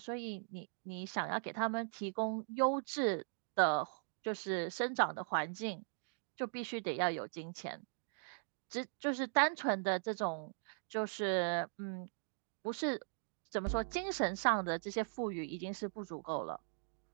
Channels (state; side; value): silent; left; digital silence